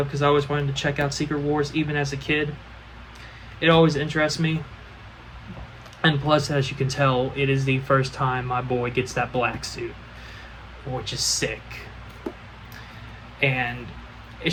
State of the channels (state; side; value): identical; both; correlation 1.00